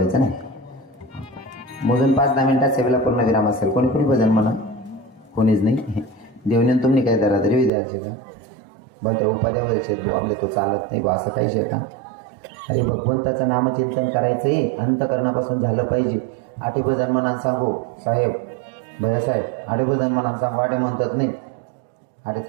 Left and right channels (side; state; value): left; drops out; at 7.7 s